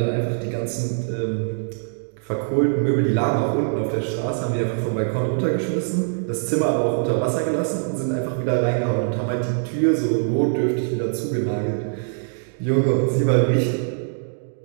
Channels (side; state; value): left; silent; digital silence